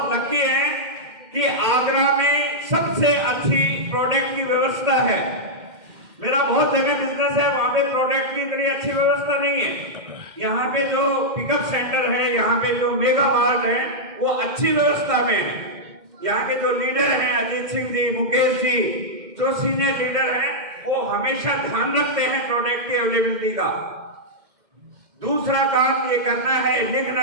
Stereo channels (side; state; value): left; late; 2.1 ms